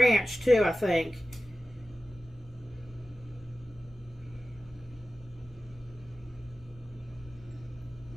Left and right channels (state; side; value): normal; both; correlation 0.95